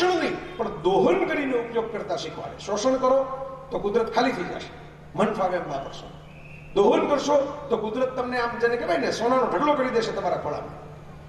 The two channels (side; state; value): both; identical; correlation 1.00